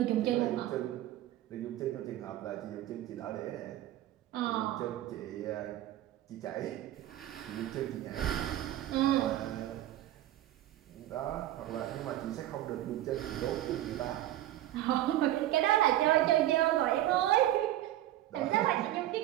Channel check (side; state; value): left; quieter; 13.9 dB